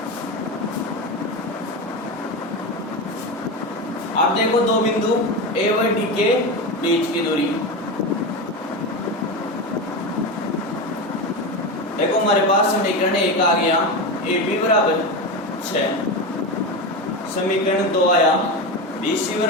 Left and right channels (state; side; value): normal; both; correlation 0.19